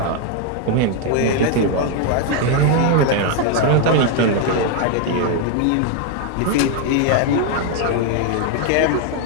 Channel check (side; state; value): both; different; correlation 0.01